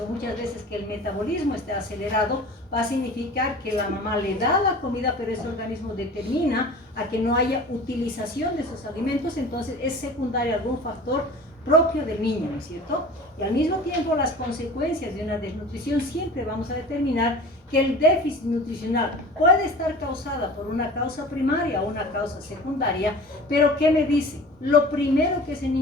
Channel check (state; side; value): normal; both; correlation 0.40